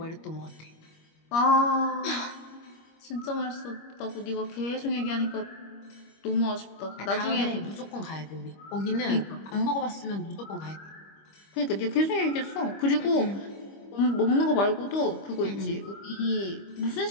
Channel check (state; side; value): late; right; 25 ms